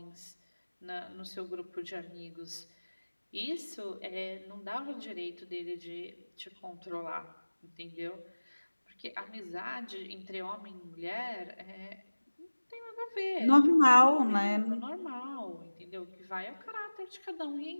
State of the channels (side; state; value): both; inverted; correlation -1.00